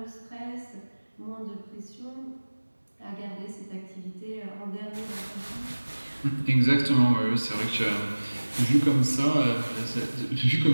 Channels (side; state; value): both; inverted; correlation -1.00